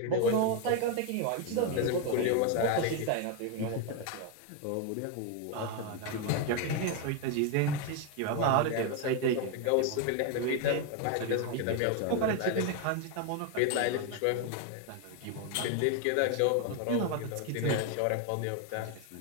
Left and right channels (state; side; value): different; both; correlation 0.01